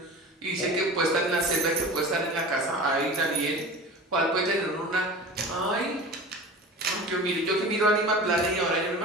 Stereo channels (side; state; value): both; normal; correlation 0.35